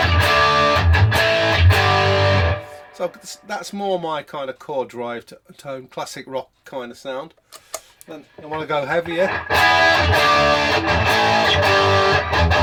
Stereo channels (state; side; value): identical; both; correlation 1.00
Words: So that's more my kind of chord drive tone, classic rock kind of sound. Then I want to go heavier.